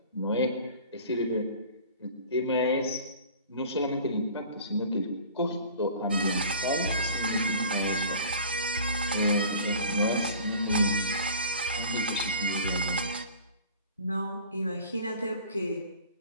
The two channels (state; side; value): inverted; both; correlation -0.44